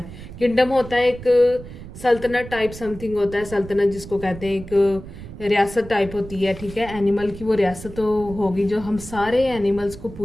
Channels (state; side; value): noise; right; rumble, 14 dB below the sound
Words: किंगडम होता है एक सल्तनत टाइप समथिंग होता है, सल्तनत जिसको कहते हैं, एक रियासत टाइप होती है, ठीक है। एनिमल की वो रियासत तो होगी, जो हम सारे एनिमल्स को,